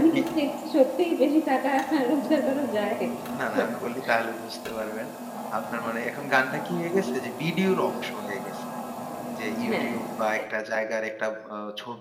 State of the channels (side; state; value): both; identical; correlation 1.00